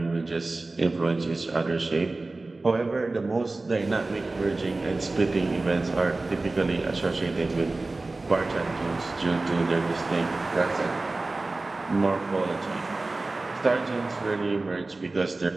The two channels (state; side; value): quieter; left; 3.2 dB